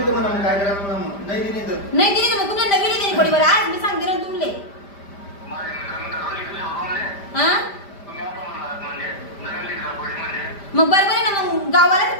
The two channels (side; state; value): right; late; 5.0 ms